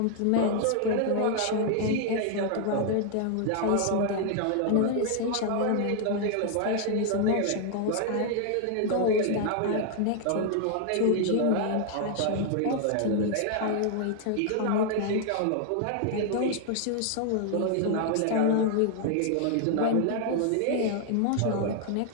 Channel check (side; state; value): both; different; correlation 0.00